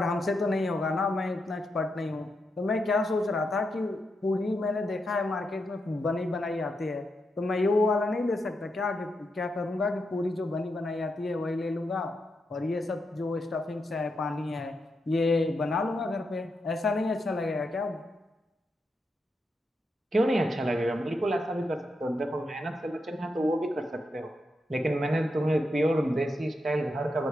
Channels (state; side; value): normal; both; correlation 0.84